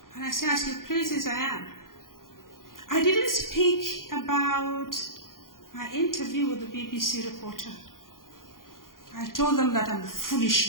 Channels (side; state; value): right; late; 0.91 ms